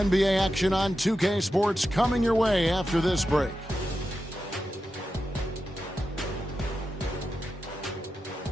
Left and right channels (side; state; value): both; normal; correlation 0.90